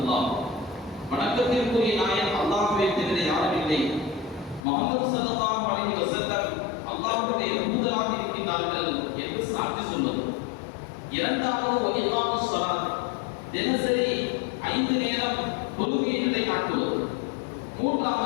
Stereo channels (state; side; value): drops out; right; at 4.7 s